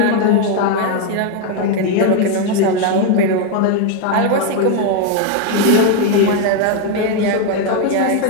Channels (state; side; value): different; both; correlation 0.01